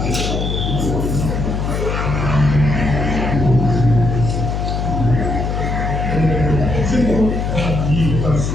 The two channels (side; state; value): left; noise; hum, 1 dB below the sound